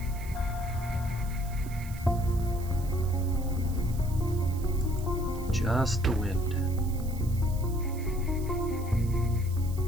Just the wind.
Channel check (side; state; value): right; noise; hiss, 18 dB below the sound